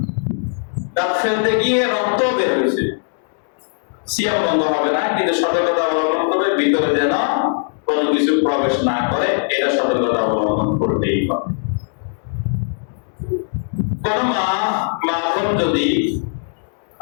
দাঁত ফেলতে গিয়ে রক্ত বের হয়েছে, সিয়াম ভঙ্গ হবে না, কিন্তু সতর্কতা অবলম্বন করে ভিতরে যেন কোনো কিছু প্রবেশ না করে, এটা সতর্কতা অবলম্বন করতেই হবে। কোন মা যদি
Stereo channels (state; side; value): silent; right; digital silence